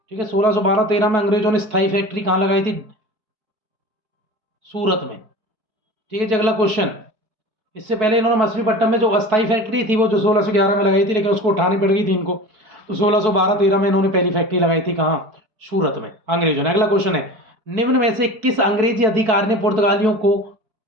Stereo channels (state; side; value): late; left; 4.6 ms